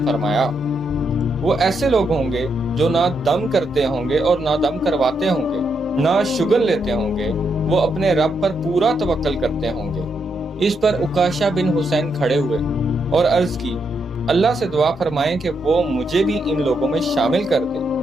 فرمایا وہ ایسے لوگ ہوں گے جو نہ دم کرتے ہوں گے اور نہ دم کرواتے ہوں گے، نہ شگن لیتے ہوں گے، وہ اپنے رب پر پورا توکل کرتے ہوں گے۔ اس پر عکاشہ بن حسین کھڑے ہوئے اور عرض کی اللہ سے دعا فرمائیں کہ وہ مجھے بھی ان لوگوں میں شامل کر دے۔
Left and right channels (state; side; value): normal; both; correlation 0.80